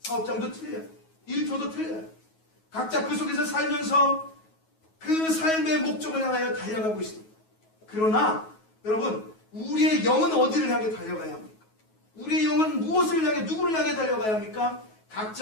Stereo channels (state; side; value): late; right; 9.3 ms